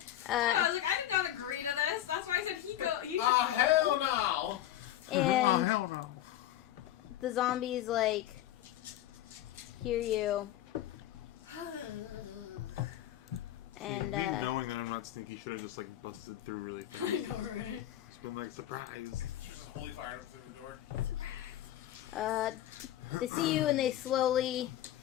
I was like, I did not agree to this. That's why I said he should go. Hell no! And Oh, hell no. the zombies like hear you, and Me knowing that I'm not sneaky should have just like busted through really I fast. know, right? It's been like surprise. She's just holy fire up through the door. they see you and they slowly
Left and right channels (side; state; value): right; quieter; 12.7 dB